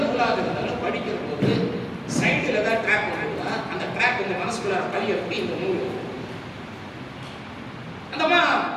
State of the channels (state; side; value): identical; both; correlation 1.00